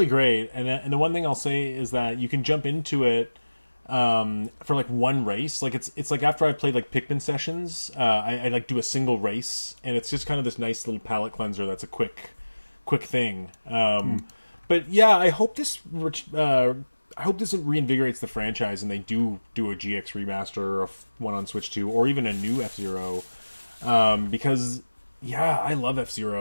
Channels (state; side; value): inverted; both; correlation -1.00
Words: great. And the one thing I'll say is that you can jump into it for like one race. Like it's like after I've played like Pikmin sessions, I like do a single race, and it's just kind of this nice little palate cleanser that's a quick thing. But yeah, I hope this reinvigorates the franchise and they do a GX remaster of one on Switch 2 or even a new F-Zero, because yeah, I love